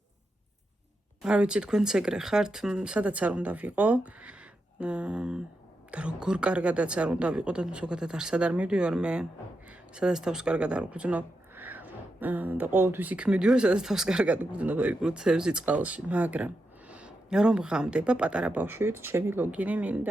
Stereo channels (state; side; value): normal; both; correlation 0.87